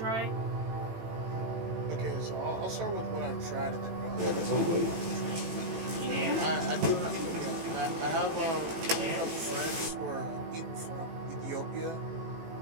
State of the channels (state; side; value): late; left; 18 ms